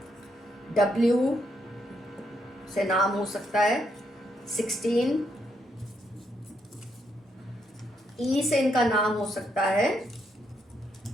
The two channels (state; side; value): normal; both; correlation 0.77